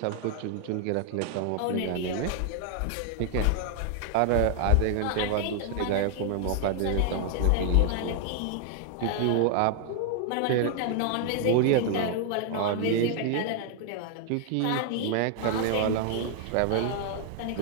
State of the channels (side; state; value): both; different; correlation 0.00